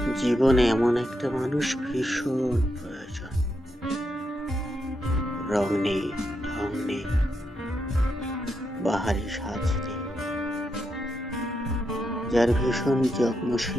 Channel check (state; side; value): normal; both; correlation 0.83